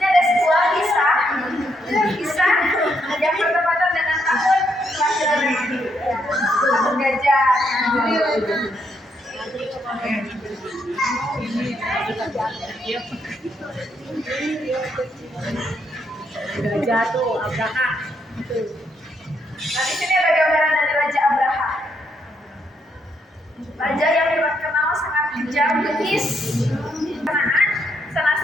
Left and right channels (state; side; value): normal; both; correlation 0.76